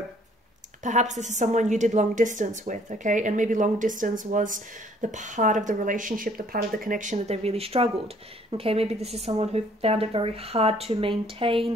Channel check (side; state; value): both; normal; correlation 0.60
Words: perhaps this is someone you did long distance with, okay? And maybe long distance was the part of the relationship, the part of the connection that they really struggled, okay? Maybe this is someone who found it very hard to